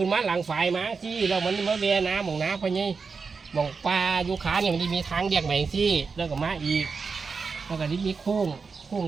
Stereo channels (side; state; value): left; quieter; 5.0 dB